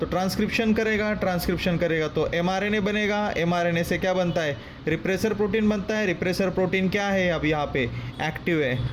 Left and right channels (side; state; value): both; identical; correlation 1.00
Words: ट्रांसक्रिप्शन करेगा, ट्रांसक्रिप्शन करेगा तो एमआरएनए बनेगा, एमआरएनए से क्या बनता है, रिप्रेसर प्रोटीन बनता है. रिप्रेसर प्रोटीन क्या है, अब यहाँ पे एक्टिव